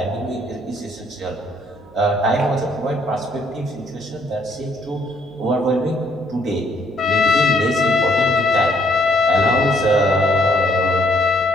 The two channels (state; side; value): noise; right; hum, 28 dB below the sound